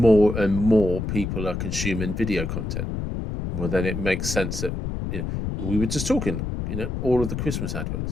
and more people are consuming video content. Well, then it makes sense that we were just talking, all of the Christmas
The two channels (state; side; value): noise; left; rumble, 3 dB below the sound